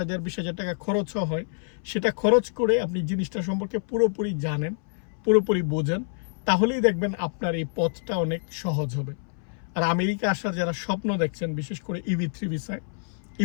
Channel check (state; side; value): silent; right; 60 dB below the other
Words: 20,000 টাকা খরচও হয়, সেটা খরচ করে আপনি জিনিসটা সম্পর্কে পুরোপুরি জানেন, পুরোপুরি বোঝেন, তাহলেই দেখবেন আপনার এই পথটা অনেক সহজ হবে। আর আমেরিকা আসার যারা স্বপ্ন দেখছেন, বিশেষ করে EB3 ভিসায়,